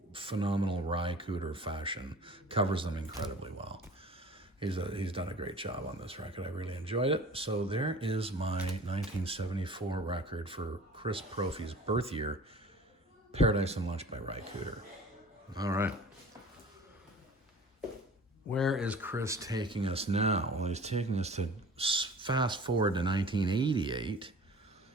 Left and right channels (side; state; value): both; normal; correlation 0.43